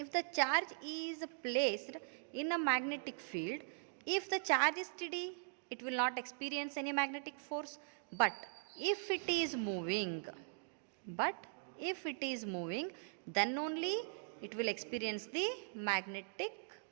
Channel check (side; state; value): left; silent; digital silence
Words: the charge is placed in a magnetic field, if the charge is steady, it will not experience any magnetic force. But if it is moving, then only it will experience the magnetic